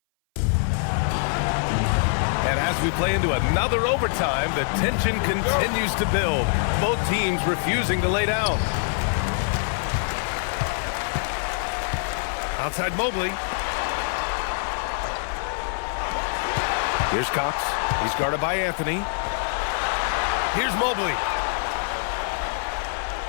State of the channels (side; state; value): right; silent; 58 dB below the other